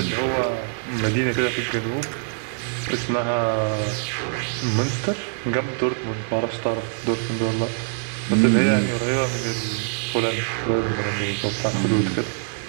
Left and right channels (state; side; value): silent; left; digital silence